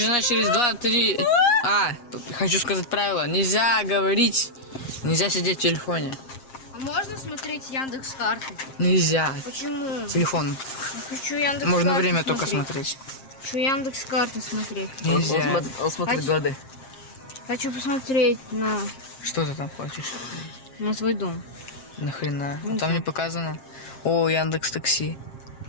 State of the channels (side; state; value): right; late; 7.5 ms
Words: через 2-3. Хочу сказать правило. Нельзя говорить, нельзя сидеть в телефоне. А можно смотреть Яндекс.Карты? Нельзя. Почему? Телефон. Хочу Яндекс.Карты. Можно время только смотреть. Хочу Яндекс.Карты смотреть. Нельзя. Он смотрит годы. Хочу посмотреть на Что ты там хочешь? свой дом. Нахрена? Не Там знаю. не показано. О, Яндекс Такси.